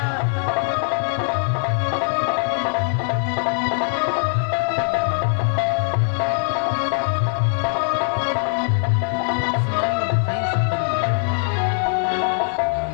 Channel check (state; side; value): silent; right; 60 dB below the other